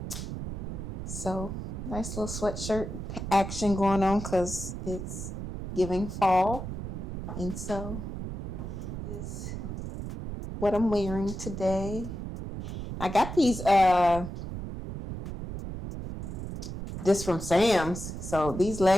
So nice little sweatshirt action going on because it's giving fall. And so this is what I'm wearing today. I got these this from Sam's. So these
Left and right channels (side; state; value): right; noise; rumble, 7 dB below the sound